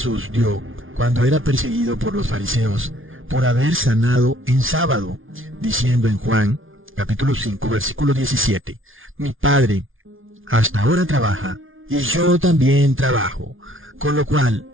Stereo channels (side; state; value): left; late; 0.58 ms